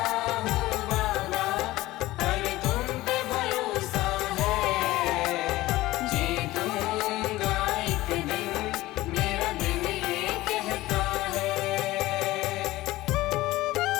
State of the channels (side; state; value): right; quieter; 17.7 dB